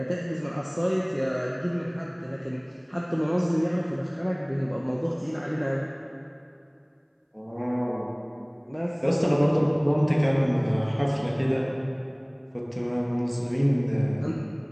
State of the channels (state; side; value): identical; both; correlation 1.00